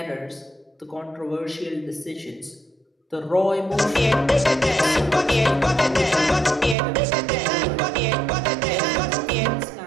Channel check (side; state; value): left; drops out; at 6.8 s